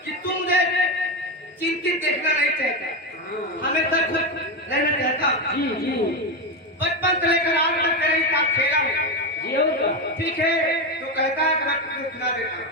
कि तुम मुझे चिंतित देखना नहीं चाहता, हमेशा खुश रहना चाहता। जी जी बचपन से लेकर आज तक तेरे ही साथ खेला हूँ। जी होगा। ठीक है, तो कहता है कि मैं तुझे सुना देता हूँ।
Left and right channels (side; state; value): both; normal; correlation 0.12